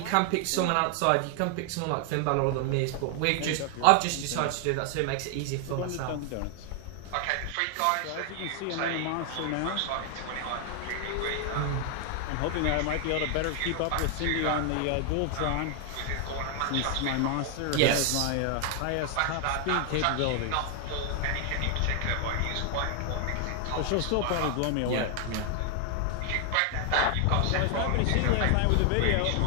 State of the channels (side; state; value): both; different; correlation 0.00